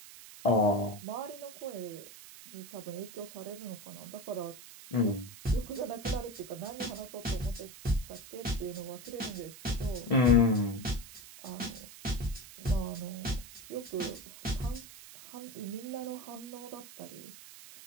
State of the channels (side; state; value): right; noise; hiss, 16 dB below the sound